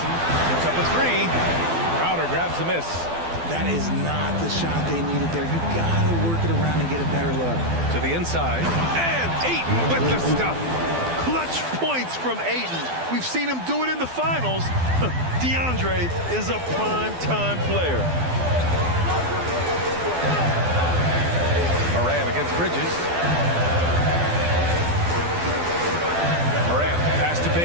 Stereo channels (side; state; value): left; late; 12 ms